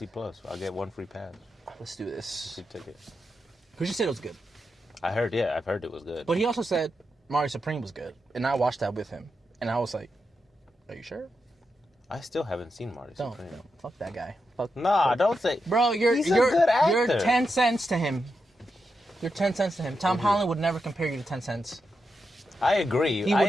Plus. I'll get one free pass. Let's do this. Free ticket. Because you said it was good. I've heard it was good. But he also said Mario Supreme was good. And I watched that with him. And I was like, are you sure? I still haven't seen Mario Supreme. No, fuck that guy. Fuck. Nah, don't say. Bro, He's a good actor. You're 10 cents to him. You're 10 cents to him. Tom Holland would never compare you to 10 cents. I agree. He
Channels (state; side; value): normal; both; correlation 0.86